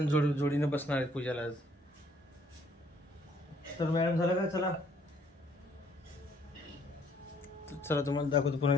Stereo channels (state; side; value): normal; both; correlation 0.64